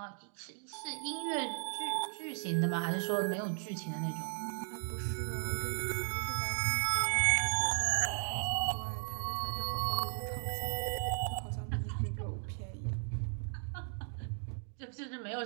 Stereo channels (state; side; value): silent; left; 54 dB below the other